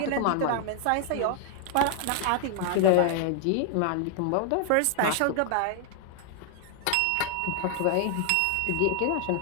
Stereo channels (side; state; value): both; different; correlation 0.00